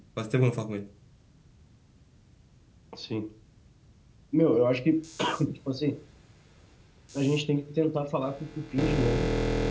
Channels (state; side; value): identical; both; correlation 1.00